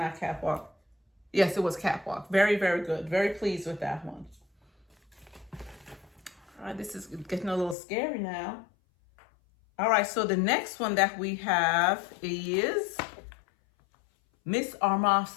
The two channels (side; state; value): right; drops out; at 7.8 s